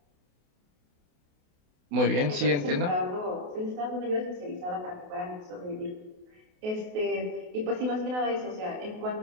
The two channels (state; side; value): late; left; 28 ms